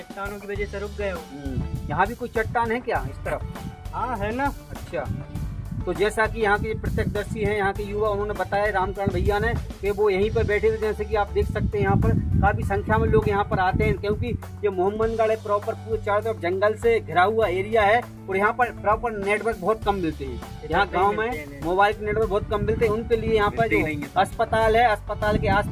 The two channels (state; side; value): identical; both; correlation 1.00